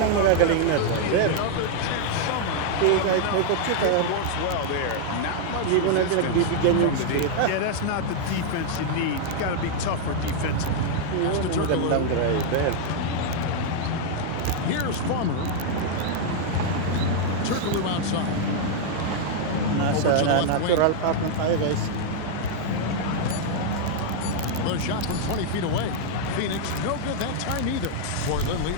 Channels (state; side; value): different; both; correlation 0.00